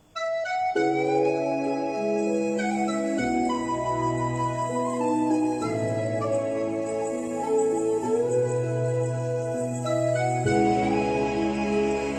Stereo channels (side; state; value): both; identical; correlation 1.00